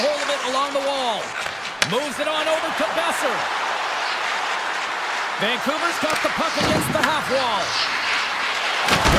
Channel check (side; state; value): both; identical; correlation 1.00